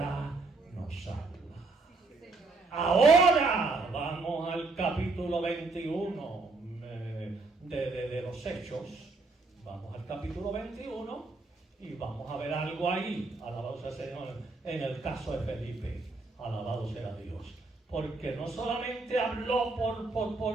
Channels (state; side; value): quieter; left; 3.6 dB